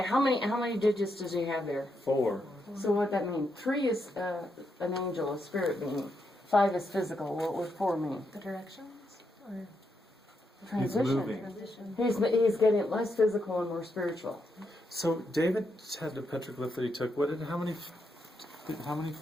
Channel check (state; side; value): normal; both; correlation 0.81